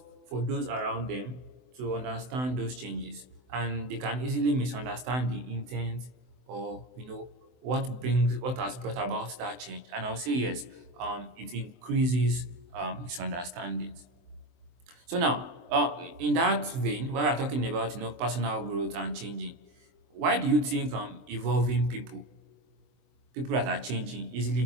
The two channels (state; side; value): late; left; 24 ms